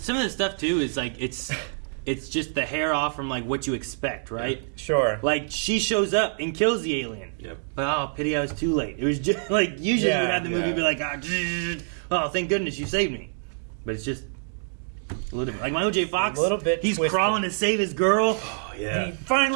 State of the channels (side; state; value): left; silent; digital silence